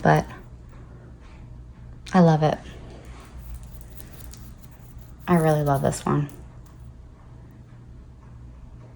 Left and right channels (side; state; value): both; identical; correlation 1.00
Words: but I love it. I really love this one.